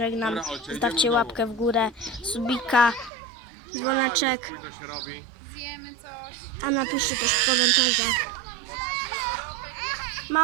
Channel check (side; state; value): left; drops out; at 3.1 s